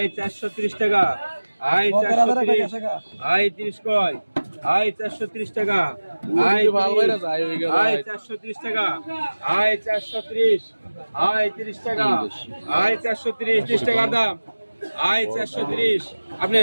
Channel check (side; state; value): both; inverted; correlation -1.00